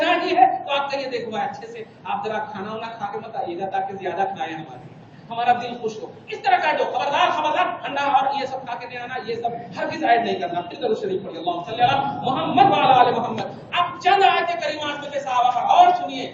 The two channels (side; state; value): both; identical; correlation 1.00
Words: ہی ہے تو آپ کہیے دیکھو اچھے سے آپ ذرا کھانا وانا کھا کے مت آئیے گا تاکہ زیادہ کھائیں ہمارا دل خوش ہو، اس طرح کا جو خبردار خبردار انڈا اور یہ سب کھا کے نہیں آنا، یہ سب ہرگز ایڈ نہیں کرنا۔ پھر درود شریف پڑھیے، اللہم صلی علی محمد وعلی آل محمد۔ اب چند آیت کریمات میں صحابہ پر اور سنیے،